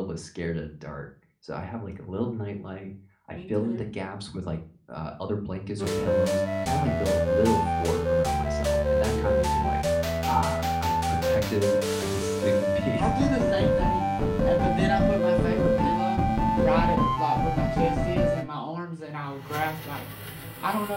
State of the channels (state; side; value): identical; both; correlation 1.00